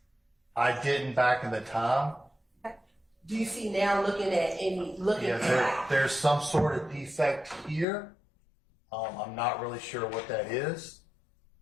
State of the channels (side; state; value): right; drops out; at 7.9 s